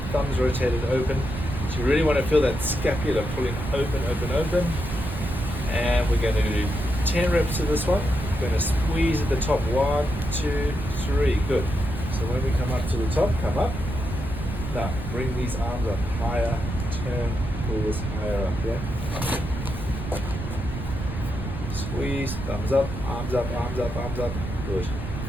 Thumbs rotated open. So you really want to feel that scapula pulling open, open, open. And we're going to do 10 reps of this one. We're going to squeeze at the top. 1, 2, 3. Good. So when we come up to the top, come up. Now bring these arms up higher. Turn, pull this higher up. Yeah. Squeeze. Thumbs up. Arms up. Arms up. Arms up. Good.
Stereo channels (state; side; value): noise; right; rumble, 6 dB below the sound